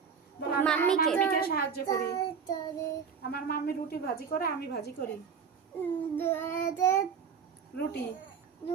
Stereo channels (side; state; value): left; quieter; 6.5 dB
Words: বলো আমি আমার মাম্মিকে। মাম্মিকে সাহায্য করি। আমার মাম্মি রুটি ভাজি করে, আমি ভাজি করি। রুটি